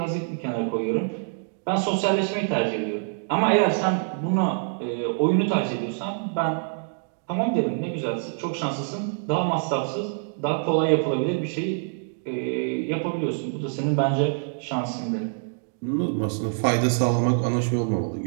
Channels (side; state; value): left; silent; digital silence